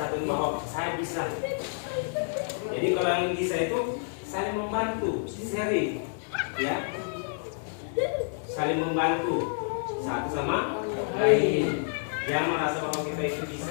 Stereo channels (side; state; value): right; silent; 59 dB below the other